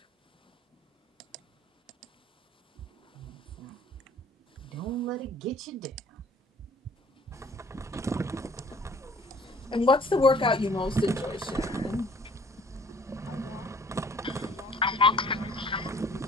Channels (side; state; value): both; normal; correlation 0.54